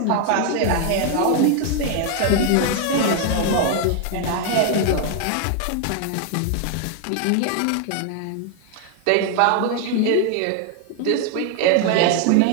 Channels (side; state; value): both; different; correlation 0.00